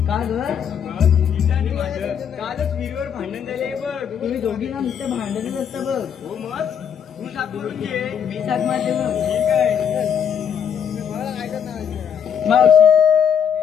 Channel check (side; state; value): right; quieter; 8.0 dB